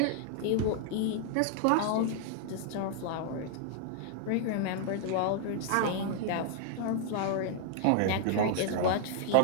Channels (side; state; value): both; different; correlation 0.00